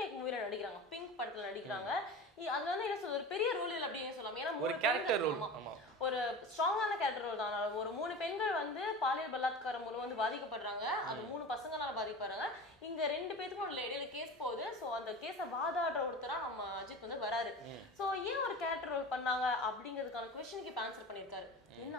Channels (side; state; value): both; normal; correlation 0.32